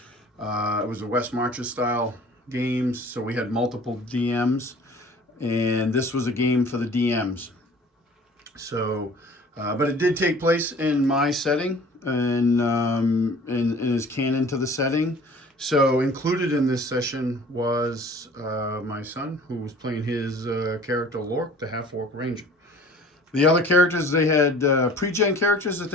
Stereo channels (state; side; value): normal; both; correlation 0.48